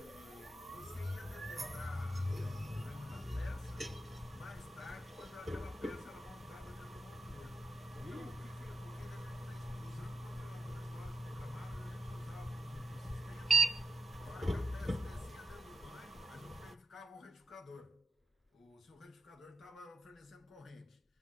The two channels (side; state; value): both; normal; correlation 0.85